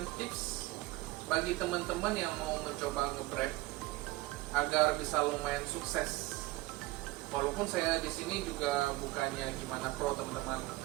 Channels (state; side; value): quieter; left; 19.7 dB